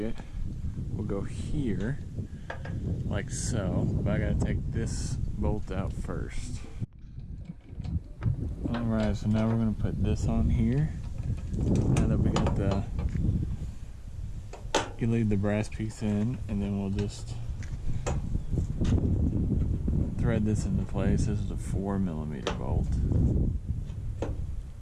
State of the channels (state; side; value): identical; both; correlation 1.00